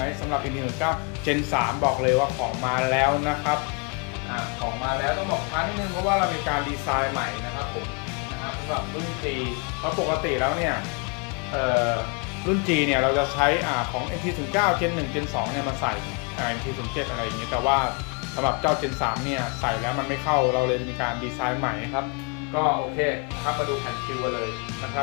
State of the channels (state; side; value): quieter; right; 33.5 dB